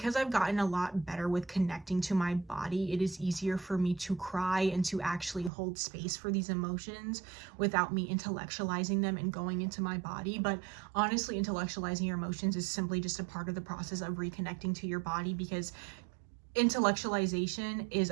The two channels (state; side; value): drops out; left; at 5.5 s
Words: I've gotten a lot better with connecting to my body, it is easier for me to cry and to actually hold space for these emotions without me intellectualizing them and going into my body. But honestly, intellectualizing your emotions is simply just a part of the process of reconnecting to your body, because intellectualization is